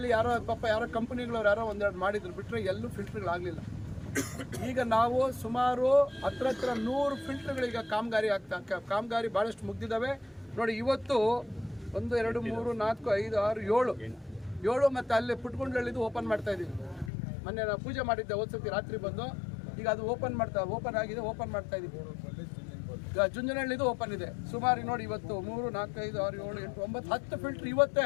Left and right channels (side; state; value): right; drops out; at 17.1 s